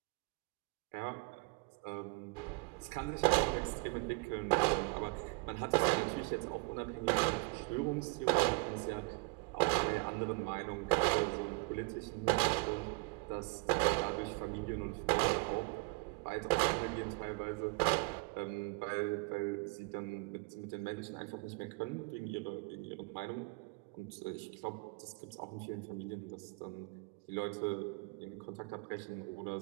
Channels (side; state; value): left; quieter; 28.5 dB